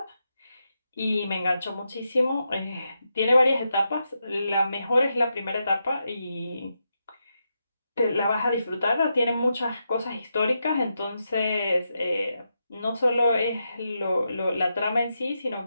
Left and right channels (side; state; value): both; inverted; correlation -0.85